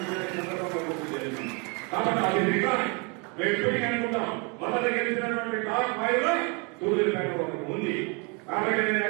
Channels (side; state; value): left; quieter; 32.8 dB